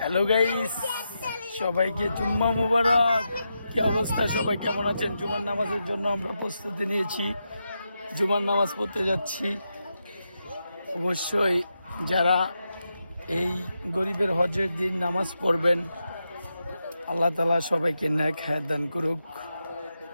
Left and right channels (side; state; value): both; inverted; correlation -0.86